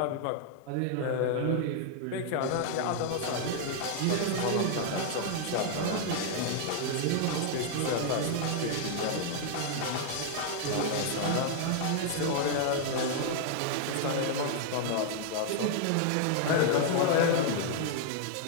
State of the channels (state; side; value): different; both; correlation 0.00